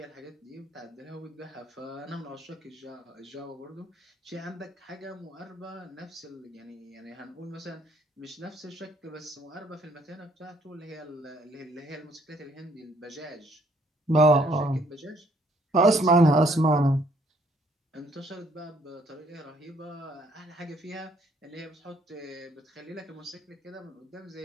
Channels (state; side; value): normal; both; correlation 0.65